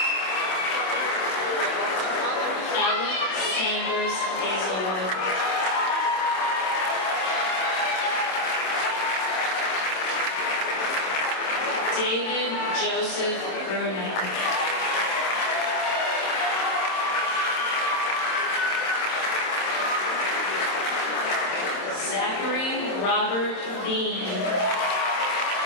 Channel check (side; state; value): right; late; 27 ms